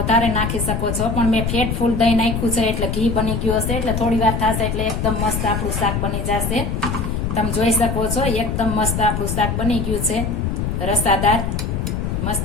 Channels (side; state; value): left; noise; rumble, 1 dB below the sound